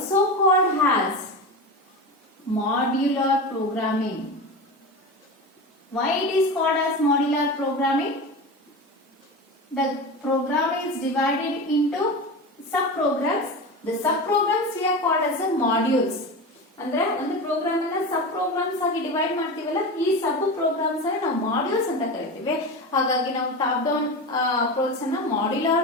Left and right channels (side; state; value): both; normal; correlation 0.25